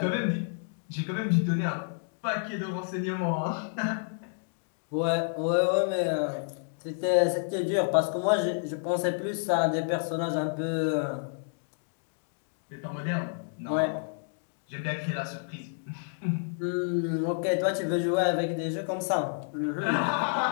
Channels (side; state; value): right; silent; digital silence